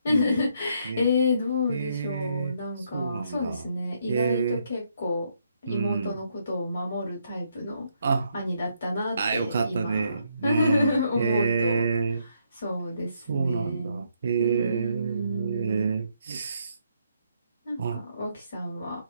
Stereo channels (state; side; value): inverted; both; correlation -0.74